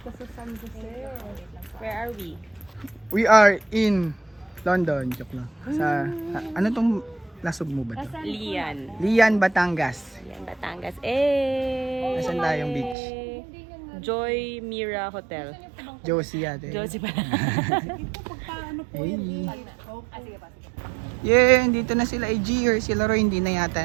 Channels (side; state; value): left; drops out; at 13.0 s